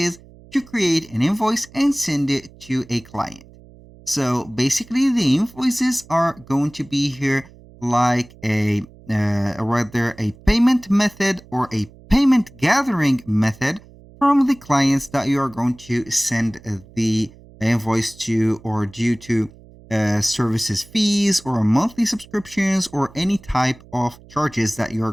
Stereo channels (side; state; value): right; noise; hum, 23 dB below the sound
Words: to create an invoice and send it to a client. So basically the invoices are going to be here like rather a payment method or a payment gathering method from the clients that you are going to send the invoice to or due to services fees or monthly subscriptions or any type of charges that you are